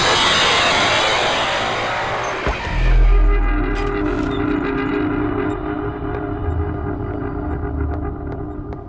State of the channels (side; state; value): both; identical; correlation 1.00